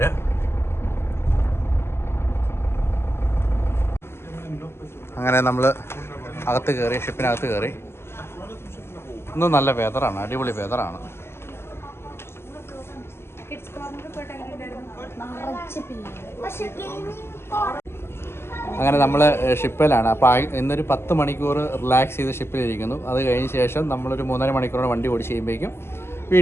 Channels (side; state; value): right; late; 0.12 ms